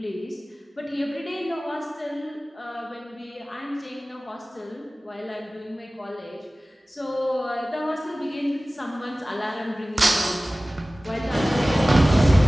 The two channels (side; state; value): both; normal; correlation 0.98